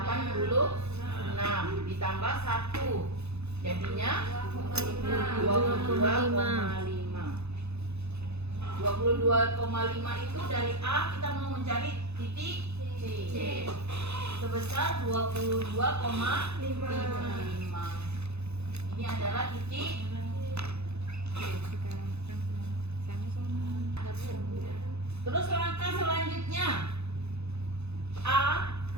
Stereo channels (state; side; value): late; left; 0.80 ms